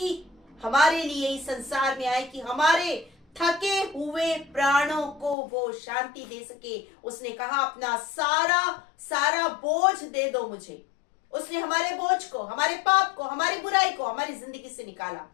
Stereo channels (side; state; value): right; drops out; at 5.4 s